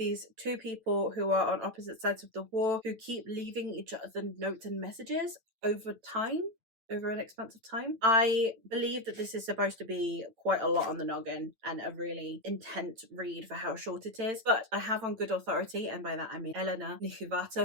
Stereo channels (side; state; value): left; late; 9.1 ms